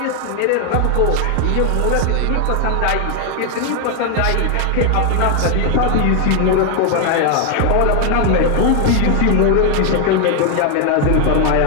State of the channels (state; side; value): different; both; correlation 0.00